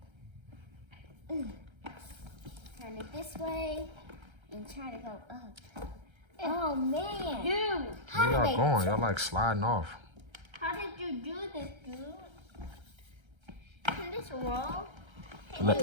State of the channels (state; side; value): late; left; 1.3 ms